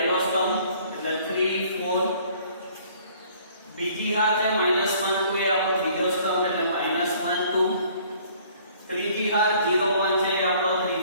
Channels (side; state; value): both; inverted; correlation -0.57